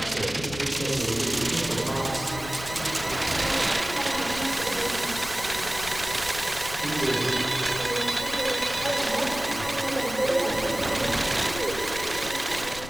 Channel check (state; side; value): noise; left; rumble, 13 dB below the sound